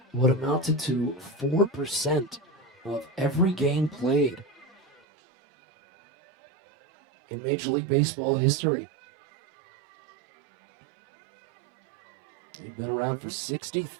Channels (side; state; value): left; drops out; at 5.0 s